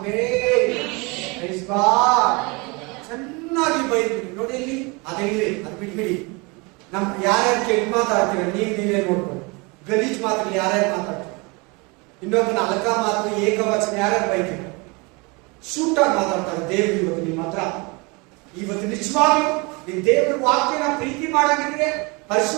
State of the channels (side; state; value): left; quieter; 28.3 dB